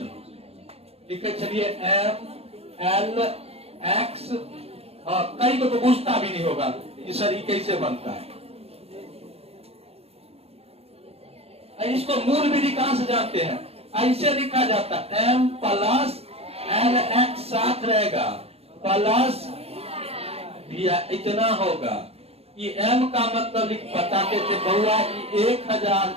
लिखे छलिए एम एल एक्स, कई को तो पूछता भी नहीं होगा कि सर ये कैसे बनता है। इसको मूल विधि कहां से जानते हैं? ऐसे लिखा जाता है एम प्लस एल एक्स साथ रहेगा प्लस भैया इतना होगा। ये एम का मतलब बताते थे बउआ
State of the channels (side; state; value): left; late; 0.29 ms